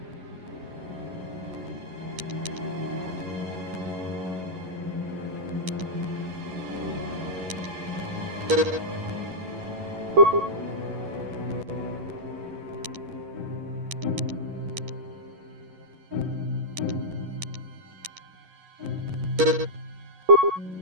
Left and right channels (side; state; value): left; late; 11 ms